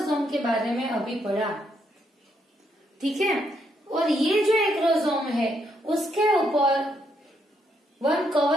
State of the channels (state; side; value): normal; both; correlation 0.76